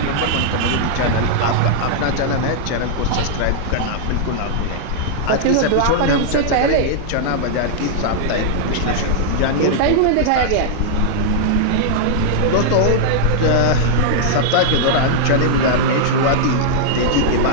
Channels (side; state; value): both; different; correlation -0.01